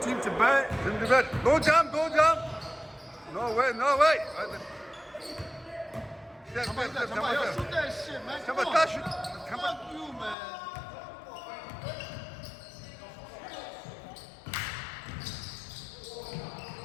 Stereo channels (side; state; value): right; drops out; at 10.4 s